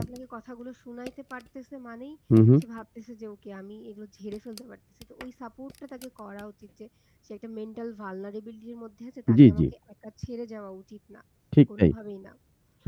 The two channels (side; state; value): both; identical; correlation 1.00